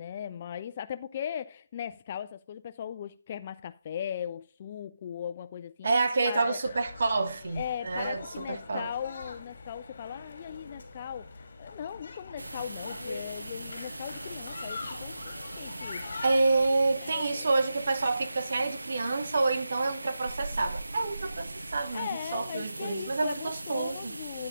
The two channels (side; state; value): both; inverted; correlation -0.87